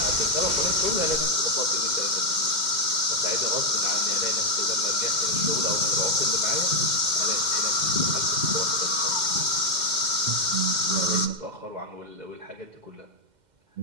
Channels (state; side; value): late; left; 2.1 ms